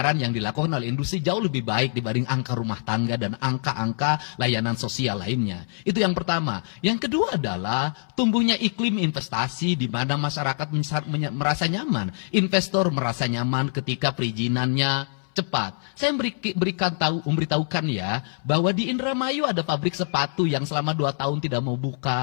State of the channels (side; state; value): right; silent; 62 dB below the other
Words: yang dilakukan oleh industri jauh lebih baik dibanding angka rumah tangga dan angka-angka layanan sosial lainnya. Itu yang pertama. Yang kedua adalah tumbuhnya iklim investasi di mana masyarakat merasa nyaman. Investor merasa nyaman ketika perizinannya cepat. Saya memberitahukan ya bahwa di Indramayu ada pabrik sepatu yang selama 2 tahun tidak mau